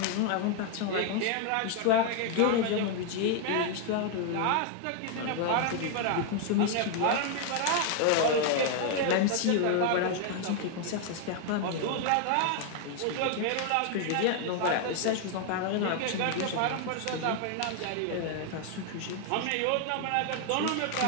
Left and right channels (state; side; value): different; both; correlation 0.00